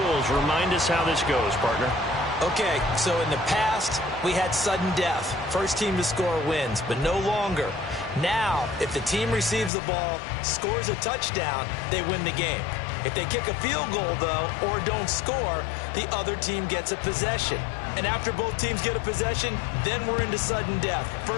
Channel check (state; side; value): drops out; right; at 9.7 s